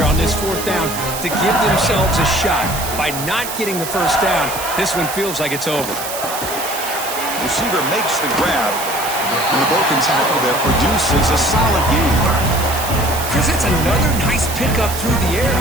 on this 4th down to give themselves a shot. By not getting the first down, this one feels like it's over. Receiver makes the grab. And the broken tackle there produces a solid gain. Chris, it's another nice pickup through the air.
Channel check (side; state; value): right; noise; hiss, 7 dB below the sound